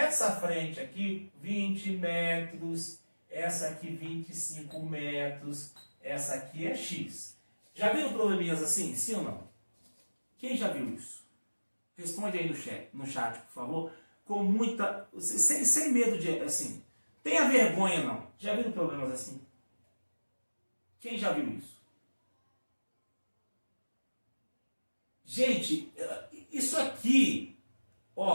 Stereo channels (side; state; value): both; inverted; correlation -1.00